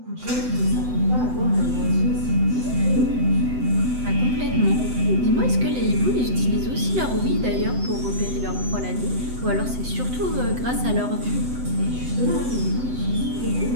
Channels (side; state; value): left; late; 7.9 ms